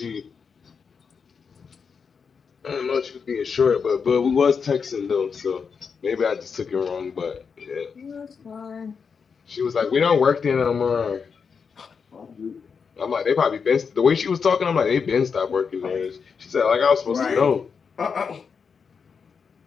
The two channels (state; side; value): quieter; right; 5.9 dB